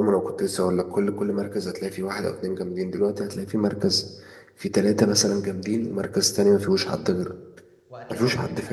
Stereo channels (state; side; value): identical; both; correlation 1.00